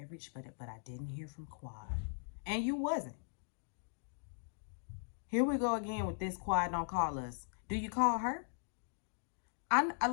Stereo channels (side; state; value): right; silent; digital silence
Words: but I didn't hear from Quad, and you wasn't. Here we go again with this Quad don't call us. Do you call her?